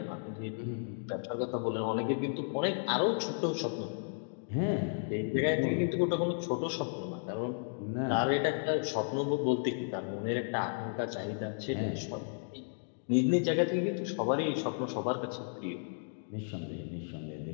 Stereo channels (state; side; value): silent; right; digital silence